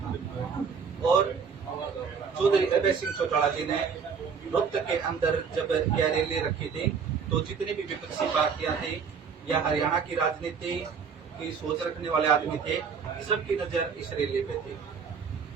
और चौधरी अभय सिंह चौटाला जी ने रोहतक के अंदर जब यह रैली रखी थी तो जितनी भी विपक्षी पार्टियां थी या हरियाणा की राजनीति की सोच रखने वाले आदमी थे, सबकी नजर इस रैली पे थी।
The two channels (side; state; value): left; quieter; 6.1 dB